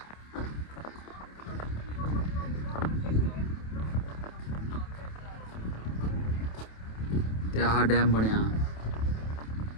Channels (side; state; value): right; late; 27 ms